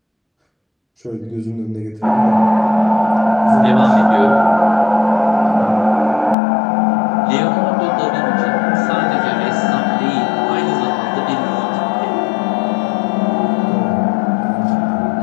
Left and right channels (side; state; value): right; drops out; at 6.4 s